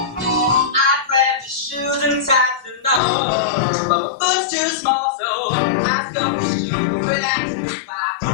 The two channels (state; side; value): drops out; right; at 3.0 s